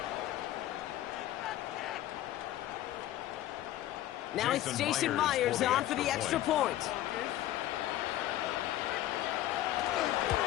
Now it's Jason Myers on for the extra point.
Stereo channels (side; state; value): right; quieter; 13.9 dB